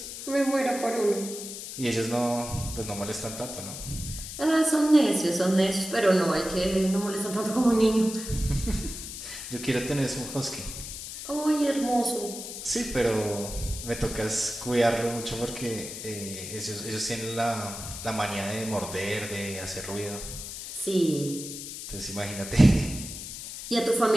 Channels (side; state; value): left; noise; hiss, 9 dB below the sound